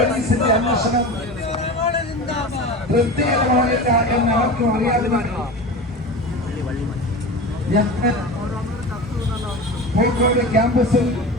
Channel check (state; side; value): normal; both; correlation 0.30